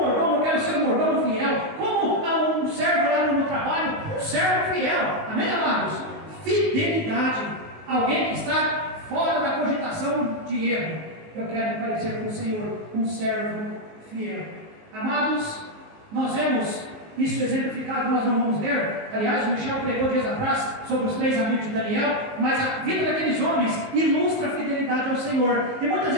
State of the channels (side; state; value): left; late; 19 ms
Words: eu quero ser um mordomo fiel. Como um servo lá no meu trabalho, um servo fiel. Amém, amados? Fidelidade. Alguém que está fora da cogitação de erro. Eu quero parecer com o Senhor, um servo fiel. Amados, nós vemos isso exemplificado, nós não vamos ler. Aliás, o Michel pregou dias atrás sobre os 3 amigos de Daniel, mas a vida daqueles homens ilustra a fidelidade ao Senhor. E muitas